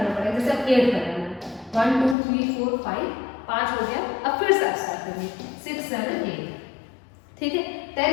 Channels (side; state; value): right; drops out; at 2.1 s